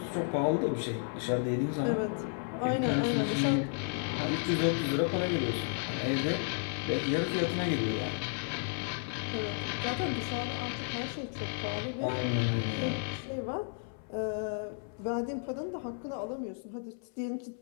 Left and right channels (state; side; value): silent; right; 56 dB below the other